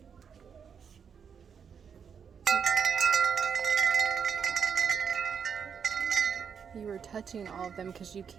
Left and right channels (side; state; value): left; quieter; 7.0 dB